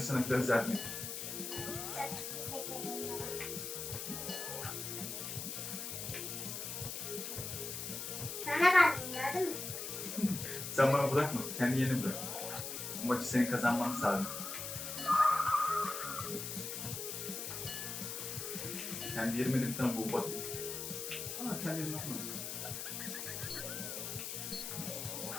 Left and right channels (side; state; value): left; noise; hiss, 5 dB below the sound